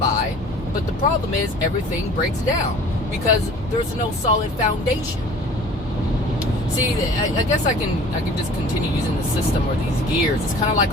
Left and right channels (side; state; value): both; normal; correlation 0.46